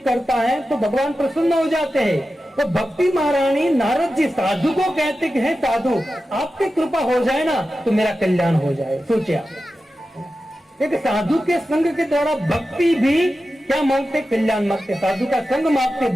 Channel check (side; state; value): both; normal; correlation 0.92